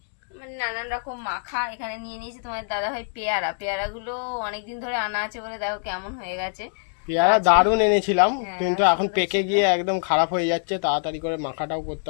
মানে নানান রকম মাখা। এখানে নিয়ে নিয়েছি তোমার দাদা ভাই পেয়ারাগুলো অনেকদিন ধরে আনা আছে বলে দেখো কেমন হয়ে গেছে। পেয়ারা দারুণ এনেছিলাম, কিন্তু এখন সুন্দর পেকে ছিল। গিয়ে একদম খারাপ হয়ে যাচ্ছে। তাড়াতাড়ি করে মাখাটাও করতে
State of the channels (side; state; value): right; silent; digital silence